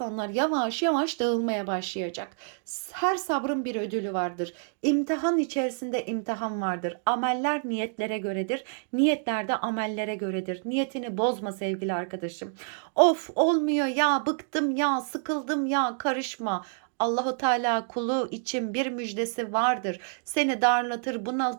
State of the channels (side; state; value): left; silent; digital silence